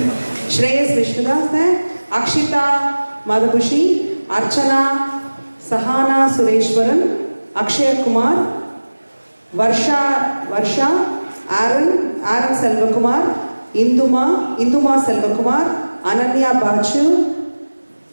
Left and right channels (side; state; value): both; inverted; correlation -1.00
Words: Shreyas Vishnudas है, अक्षिता मधुभूषी, अर्चना सहाना सुरेश्वरन, अक्षय कुमार, वर्षा आरन सेल्वकुमार, इंदुमा सेल्वकुमार, अनन्या बाचू,